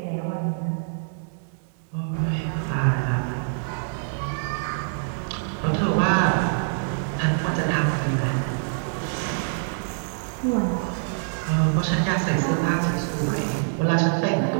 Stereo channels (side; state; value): left; silent; 62 dB below the other